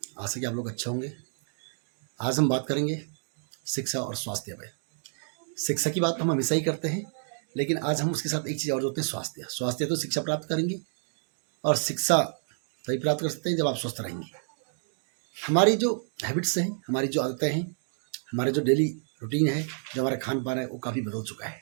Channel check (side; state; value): left; silent; digital silence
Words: आशा कि आप लोग अच्छे होंगे। आज हम बात करेंगे शिक्षा और स्वास्थ्य पे। शिक्षा की बात तो हम हमेशा ही करते हैं, लेकिन आज हम उसके साथ एक चीज़ और जोड़ते हैं, स्वास्थ्य। स्वास्थ्य तो शिक्षा प्राप्त करेंगे और शिक्षा तभी प्राप्त कर सकते हैं जब आप स्वस्थ रहेंगे। हमारी जो हैबिट्स हैं, हमारी जो आदतें हैं, हमारे जो डेली रूटीन है, जो हमारा खान पान है, वो काफ़ी बदल चुका